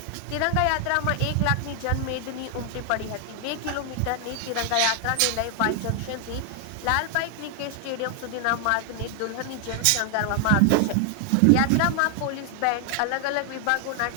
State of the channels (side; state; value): both; different; correlation 0.00